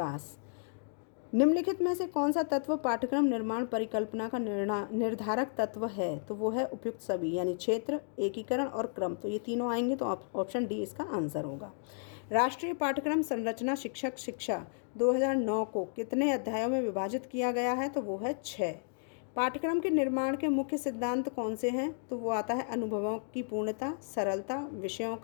निम्नलिखित में से कौन सा तत्व पाठ्यक्रम निर्माण परिकल्पना का निर्धारक तत्व है? तो वो है उपयुक्त सभी, यानी क्षेत्र, एकीकरण और क्रम। तो ये तीनों आएंगे, तो ऑप्शन डी इसका आंसर होगा। राष्ट्रीय पाठ्यक्रम संरचना शिक्षक शिक्षा 2009 को कितने अध्यायों में विभाजित किया गया है? तो वो है 6। पाठ्यक्रम के निर्माण के मुख्य सिद्धांत कौन से हैं? तो वो आता है अनुभवों की पूर्णता, सरलता, विषयों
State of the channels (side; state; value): right; silent; digital silence